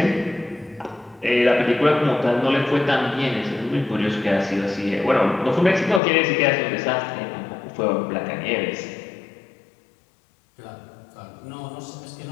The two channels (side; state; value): right; drops out; at 6.0 s